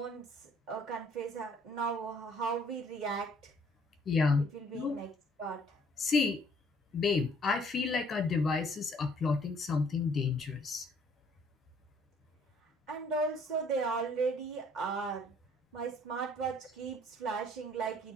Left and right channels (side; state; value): both; normal; correlation 0.61